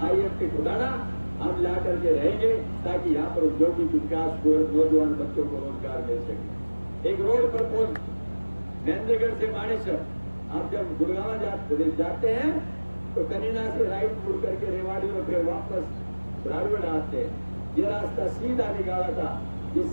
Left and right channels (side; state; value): both; inverted; correlation -1.00